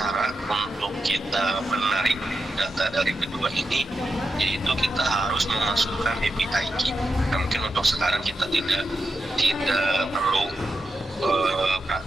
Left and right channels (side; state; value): both; normal; correlation 0.88